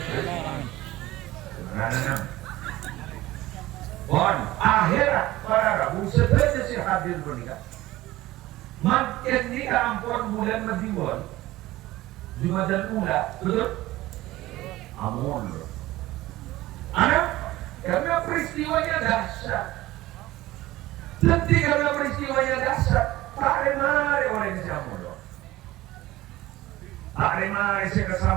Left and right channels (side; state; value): left; quieter; 17.1 dB